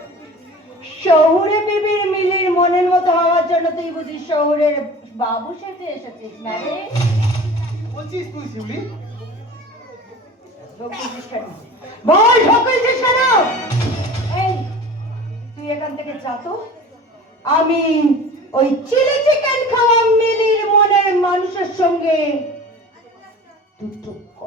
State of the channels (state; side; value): normal; both; correlation 0.39